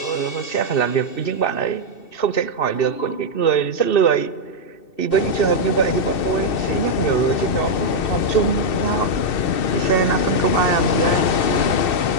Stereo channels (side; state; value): right; late; 2.6 ms